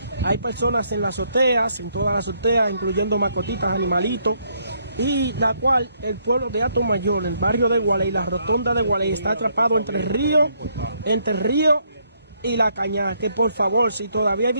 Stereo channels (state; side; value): inverted; both; correlation -0.71